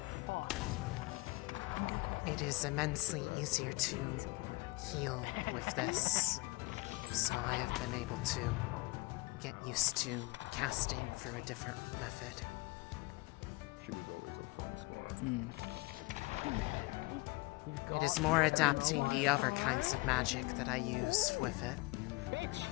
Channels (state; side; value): quieter; right; 24.4 dB